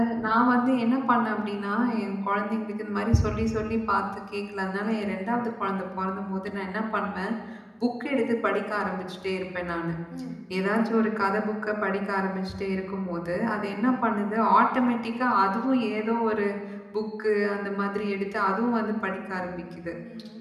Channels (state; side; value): identical; both; correlation 1.00